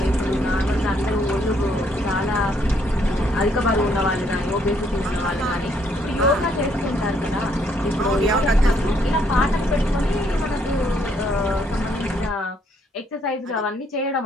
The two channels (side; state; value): both; normal; correlation 0.70